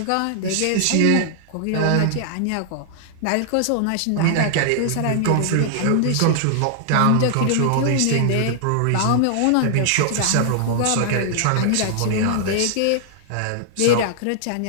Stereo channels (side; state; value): both; different; correlation -0.01